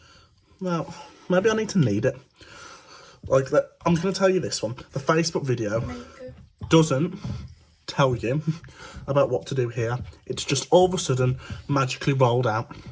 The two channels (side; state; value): both; identical; correlation 1.00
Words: Now, maybe I need to knead it. Like that. I'm going to tell you this one. The Facebook video doesn't tell you about what to do here. It's just all of a sudden magically rolled out.